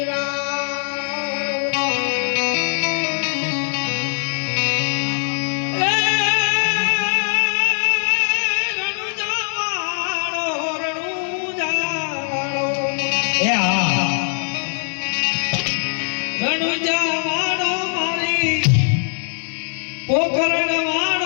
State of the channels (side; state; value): right; silent; 65 dB below the other